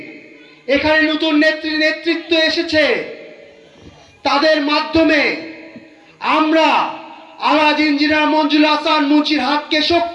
এখানে নতুন নেতৃত্ব এসেছে, তাদের মাধ্যমে আমরা আলহাজ ইঞ্জিনিয়ার মঞ্জুল হাসান মুন্সির হাতকে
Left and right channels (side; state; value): both; identical; correlation 1.00